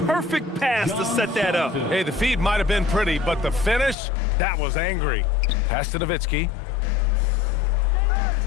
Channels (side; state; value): right; drops out; at 4.0 s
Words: perfect pass to set that up. Hey, the feed might have been pretty, but the finish, that was angry. Pass to Nowitzki.